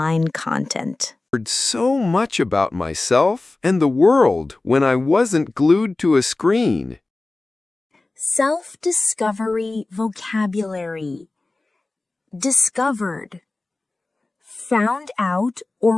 content. I heard so much about myself and the world when I wasn't glued to a screen. Self-discovery vocabulary. Discovered. Found out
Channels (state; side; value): quieter; right; 3.1 dB